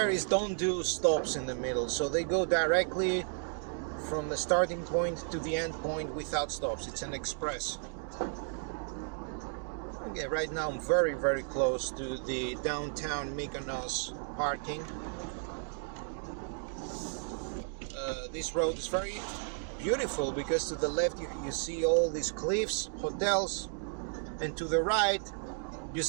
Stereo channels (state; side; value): silent; left; 55 dB below the other